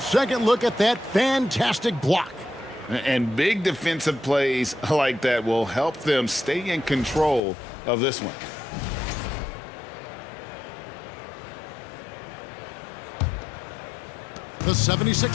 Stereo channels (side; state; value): right; drops out; at 7.4 s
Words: look at that fantastic block. And big defensive plays like that will help them stay in control of this one. The